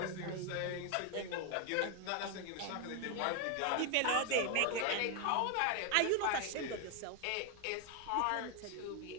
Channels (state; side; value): different; both; correlation 0.01